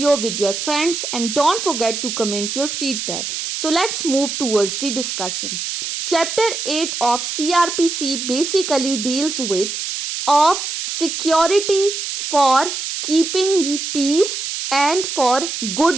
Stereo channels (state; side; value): noise; right; hiss, 4 dB below the sound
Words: with your friends and don't forget to comment your feedback. So let's move towards the discussion. Chapter 8 of CRPC basically deals with of security for keeping the peace and for